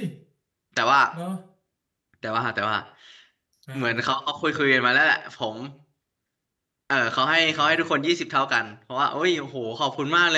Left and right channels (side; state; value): both; identical; correlation 1.00